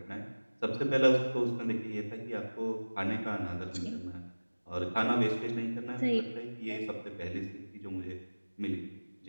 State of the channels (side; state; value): both; inverted; correlation -1.00